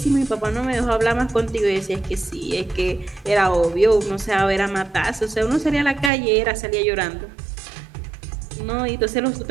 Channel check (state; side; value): drops out; left; at 6.1 s